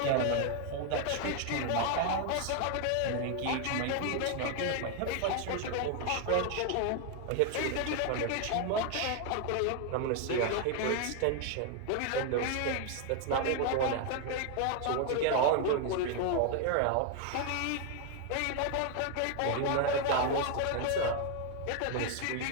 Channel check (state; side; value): different; both; correlation 0.01